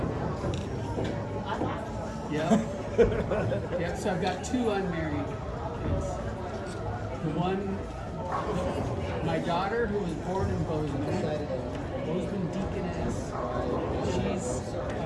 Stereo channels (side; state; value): both; identical; correlation 1.00